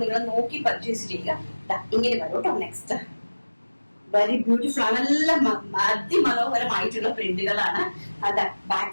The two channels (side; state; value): both; inverted; correlation -1.00